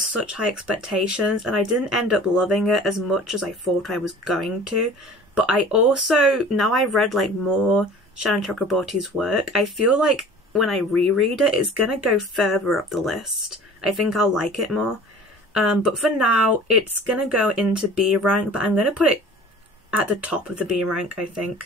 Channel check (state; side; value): normal; both; correlation 0.44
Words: high expectations and I didn't end up loving it as much as I thought I was going to. But I also, now I've read like more Shannon Chakraborty's work, I feel like when I reread it, it's gonna go further up the list. I think I'll like it more. But for now, it's gonna go into B rank, but I'm gonna put it at the top of the B rank, I